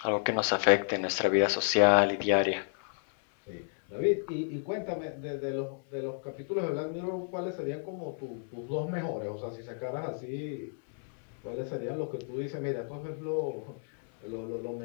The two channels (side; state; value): right; silent; digital silence